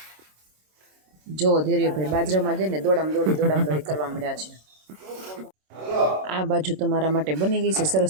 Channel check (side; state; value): left; late; 26 ms